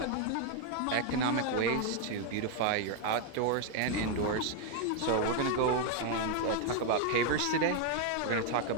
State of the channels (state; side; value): different; both; correlation 0.01